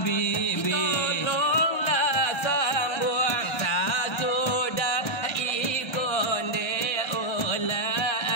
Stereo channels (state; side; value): late; right; 1.3 ms